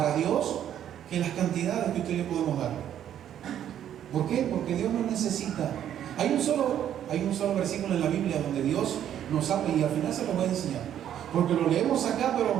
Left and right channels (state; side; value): quieter; left; 10.4 dB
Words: Dios que las cantidades que usted y yo podemos dar. ¿Por qué? Porque Dios no necesita. Hay un solo versículo en la Biblia donde Dios nos habla, y al final se lo voy a enseñar, porque lo leemos acá,